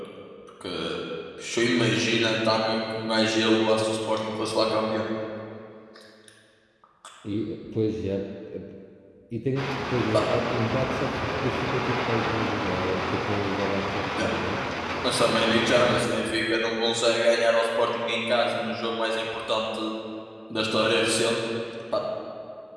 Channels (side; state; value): both; identical; correlation 1.00